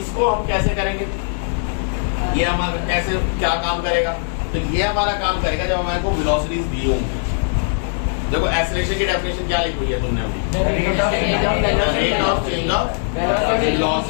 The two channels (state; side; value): silent; right; digital silence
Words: हम कैसे करेंगे? ये हमारा कैसे क्या काम करेगा? तो ये हमारा काम करेगा जब हमारे को वेलोसिटीज दी होंगी। देखो एक्सीलरेशन की डेफिनेशन क्या लिखी हुई है तुमने अभी? Rate of change of